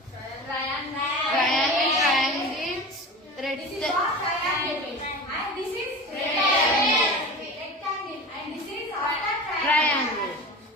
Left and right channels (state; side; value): normal; both; correlation 0.32